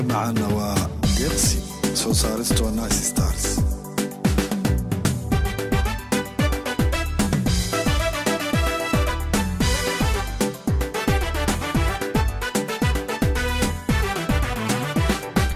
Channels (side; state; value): both; identical; correlation 1.00